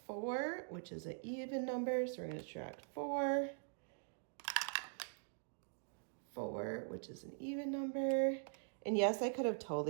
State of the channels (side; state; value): left; silent; digital silence